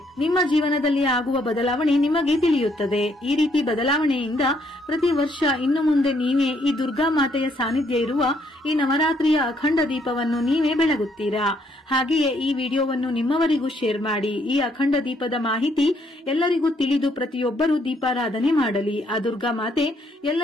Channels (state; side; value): normal; both; correlation 0.70